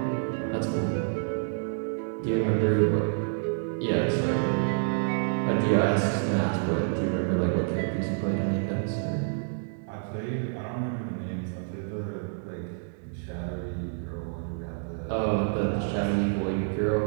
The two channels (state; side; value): silent; left; digital silence